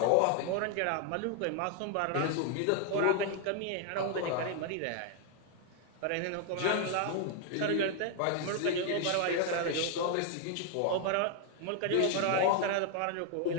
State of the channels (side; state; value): both; different; correlation 0.00